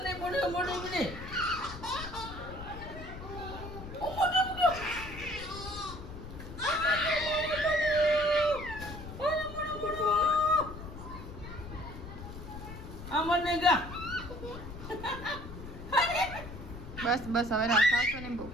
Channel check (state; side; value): noise; left; rumble, 11 dB below the sound